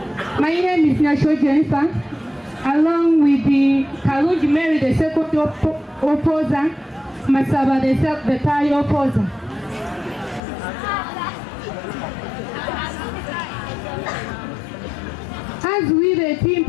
My name is Nasho Jennifer, along with the Kaluji Mary, the second opposer, Masaba, the third opposer. As we, the team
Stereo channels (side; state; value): right; drops out; at 10.4 s